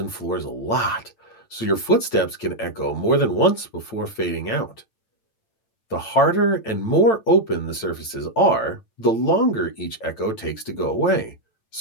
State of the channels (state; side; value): late; right; 8.9 ms